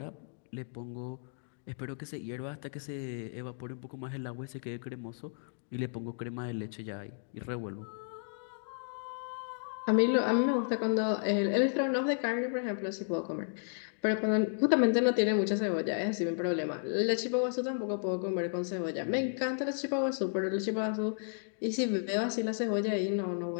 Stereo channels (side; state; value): right; silent; digital silence